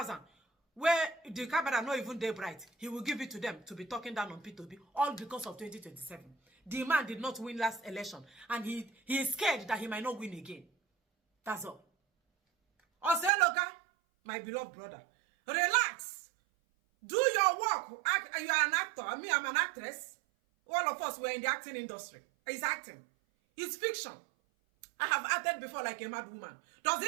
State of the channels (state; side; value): drops out; left; at 13.3 s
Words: where the camera not even day bright. He will give it to them to be talking down on Peter Obi, all because of 2027. The man did not win last election, and he is scared that he might not win again. That's all. Oseloka, my beloved brother, relax. Do your work. You are an actor. Me, I'm an actress. All of us were in the acting industry. It's acting. It's fiction. I have acted before like a mad woman. Does